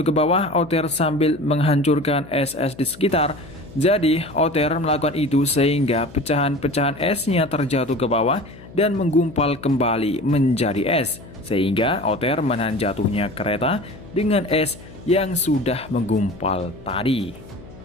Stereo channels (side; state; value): left; noise; hum, 19 dB below the sound